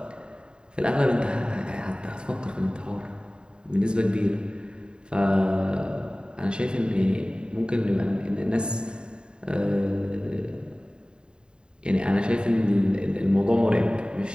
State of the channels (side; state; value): left; late; 0.049 ms